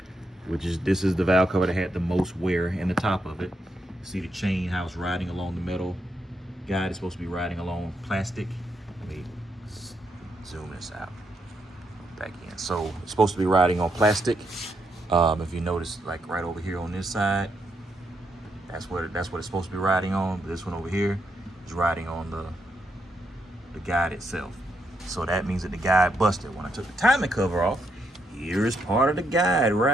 this is the valve cover that had the most wear in the top of it. See the chain, how it's riding along the metal guide. It's supposed to be riding along plastic. Let me zoom this out back in. So it's supposed to be riding on plastic. If you notice, like right over here on this side, that's what it's supposed to be riding on. This one over here is riding on the guide itself. So that means that the guide busted. When I took the timing cover off, here is part of the guide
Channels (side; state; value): both; normal; correlation 0.79